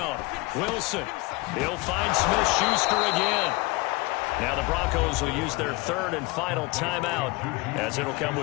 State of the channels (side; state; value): right; quieter; 22.9 dB